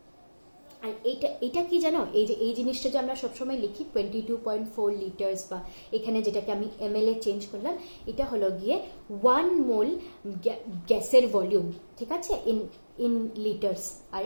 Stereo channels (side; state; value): both; inverted; correlation -1.00